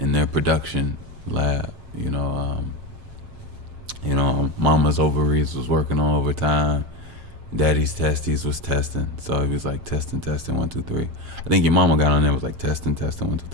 their production lab. Mama's ovaries was working on overtime. Daddy's testes was testing. So he was like testing, 1, 2, 3. I think your mama got on there, was like testing, 1, 2,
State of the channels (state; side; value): late; left; 7.4 ms